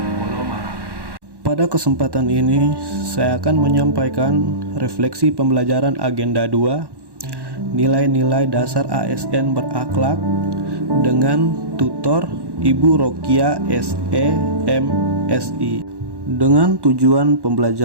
Polomarang. Pada kesempatan ini, saya akan menyampaikan refleksi pembelajaran agenda 2, nilai-nilai dasar ASN berakhlak dengan tutor Ibu Rokia SE MSI. Dengan tujuan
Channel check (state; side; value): late; left; 1.1 ms